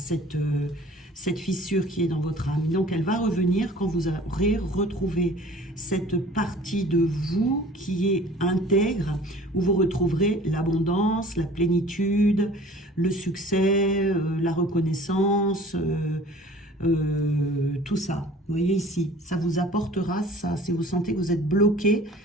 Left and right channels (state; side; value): normal; both; correlation 0.47